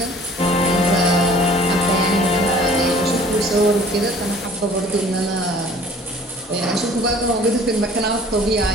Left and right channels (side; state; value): both; normal; correlation 0.51